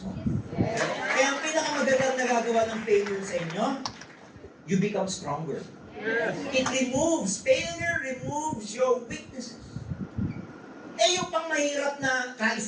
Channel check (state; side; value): identical; both; correlation 1.00